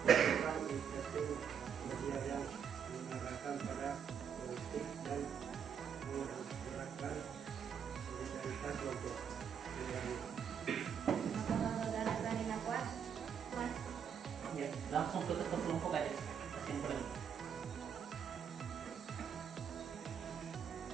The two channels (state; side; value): quieter; left; 7.6 dB